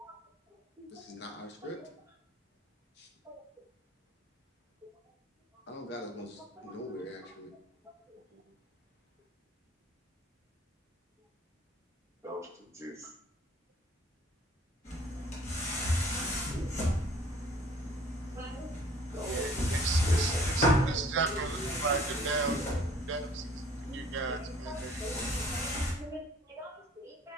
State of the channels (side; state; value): both; normal; correlation 0.54